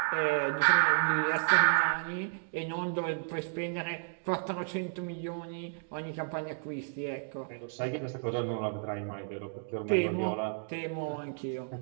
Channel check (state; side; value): silent; left; digital silence